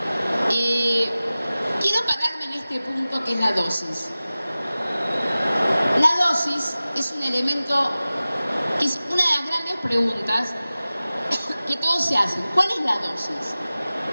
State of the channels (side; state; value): both; inverted; correlation -0.97